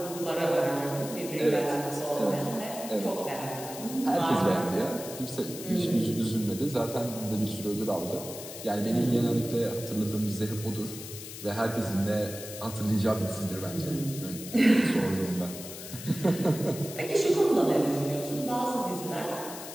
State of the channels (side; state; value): left; noise; hiss, 11 dB below the sound